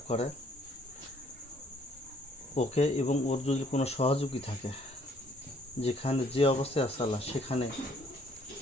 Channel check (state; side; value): normal; both; correlation 0.63